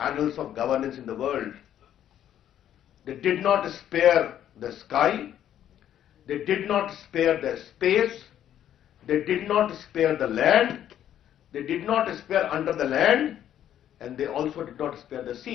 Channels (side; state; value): right; quieter; 10.8 dB